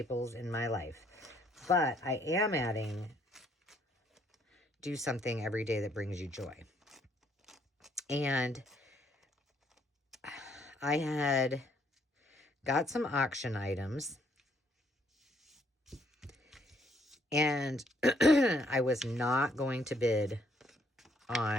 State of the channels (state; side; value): normal; both; correlation 0.68